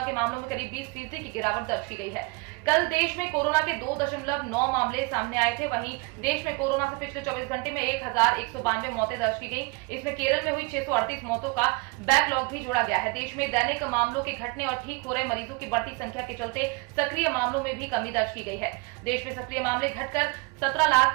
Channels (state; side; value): quieter; left; 28.8 dB